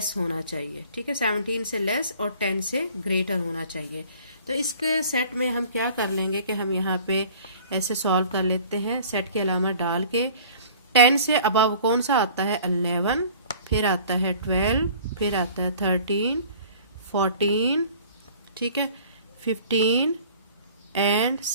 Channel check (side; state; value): both; inverted; correlation -0.48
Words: होना चाहिए, ठीक है। 17 से लेस और 10 से ग्रेटर होना चाहिए। तो इसके सेट में हम क्या कर लेंगे कि हम यहाँ पे ऐसे सॉल्व कर लेते हैं, सेट की अलामत डाल के। 10 से अबव कौन सा आता है? 11, फिर आता है 12, फिर आता है 13, 14, ठीक है, 15 एंड